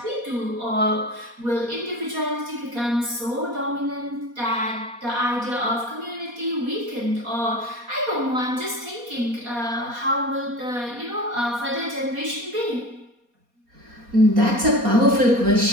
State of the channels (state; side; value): late; left; 4.2 ms